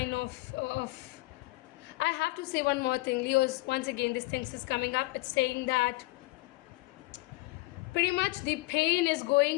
of I have to say one more thing, Leos. Once again, this thing is coming up. It's saying that pretty much the pain is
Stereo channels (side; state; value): right; quieter; 21.8 dB